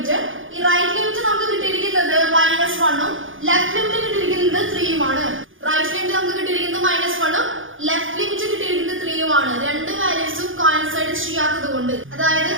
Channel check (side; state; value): left; late; 0.58 ms